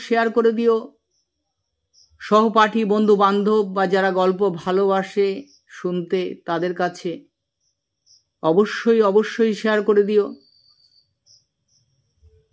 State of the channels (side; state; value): both; identical; correlation 1.00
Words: শেয়ার করে দিও সহপাঠী, বন্ধু বান্ধব বা যারা গল্প ভালোবাসে শুনতে তাদের কাছে অবশ্যই অবশ্যই শেয়ার করে দিও।